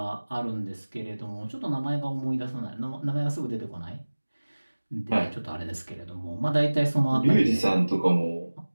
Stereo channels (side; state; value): both; inverted; correlation -1.00